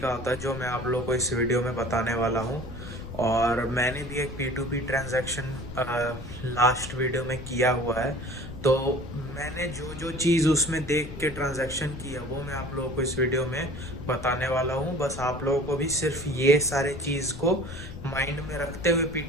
होता है, जो मैं आप लोगों को इस वीडियो में बताने वाला हूँ। और मैंने भी एक P2P ट्रांजैक्शन लास्ट वीडियो में किया हुआ है, तो मैंने जो जो चीज़ उसमें देख के ट्रांजैक्शन की है वो मैं आप लोगों को इस वीडियो में बताने वाला हूँ। बस आप लोगों को भी सिर्फ ये सारे चीज़ को माइंड में रखते हुए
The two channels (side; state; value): left; noise; rumble, 11 dB below the sound